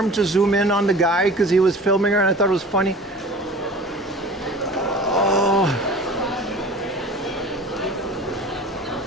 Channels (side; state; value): both; normal; correlation 0.40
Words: to zoom in on the guy because he was filming her and I thought it was funny. Oh.